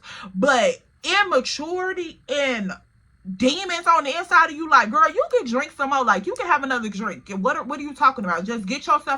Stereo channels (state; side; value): identical; both; correlation 1.00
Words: But immaturity and demons on the inside of you, like, girl, you can drink some more, like, you can have another drink. What are you talking about? Just get